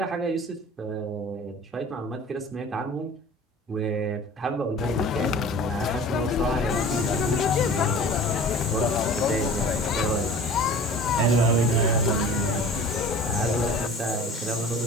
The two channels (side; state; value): both; normal; correlation 0.42